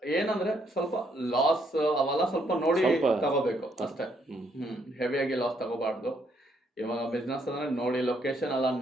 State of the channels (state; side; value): normal; both; correlation 0.72